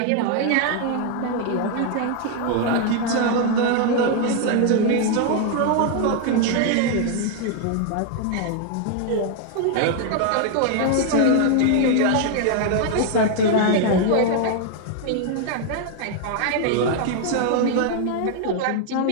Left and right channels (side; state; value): both; different; correlation 0.00